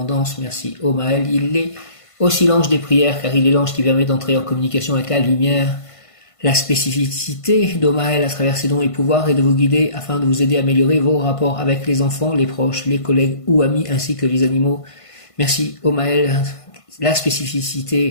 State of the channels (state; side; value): late; right; 1.5 ms